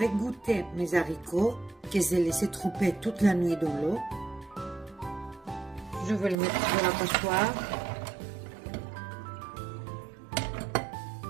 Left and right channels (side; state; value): left; drops out; at 6.4 s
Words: égoutter mes haricots que j'ai laissé tremper toute la nuit dans l'eau. Je vais les mettre dans la passoire.